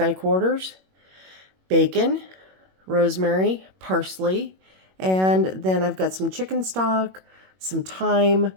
quarters, bacon, rosemary, parsley, and then I've got some chicken stock, some thyme,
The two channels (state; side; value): late; left; 21 ms